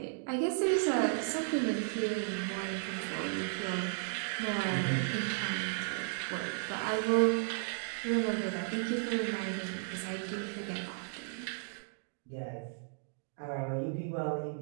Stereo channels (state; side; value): silent; left; digital silence